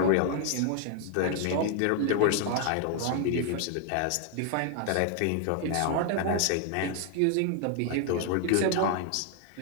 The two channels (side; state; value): both; different; correlation 0.00